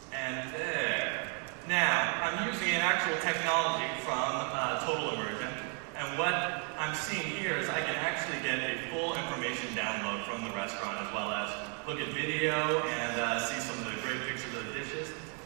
And there. Now, I'm using an actual technology from Total Immersion. And what I'm seeing here is I can actually get a full information download from the restaurant, as well as look at video and see some of the great pictures of the dishes.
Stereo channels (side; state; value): left; quieter; 39.3 dB